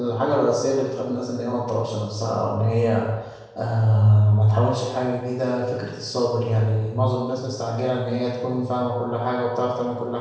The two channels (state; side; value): identical; both; correlation 1.00